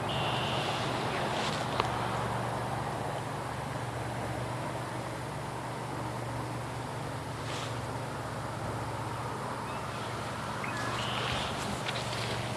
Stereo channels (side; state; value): both; identical; correlation 1.00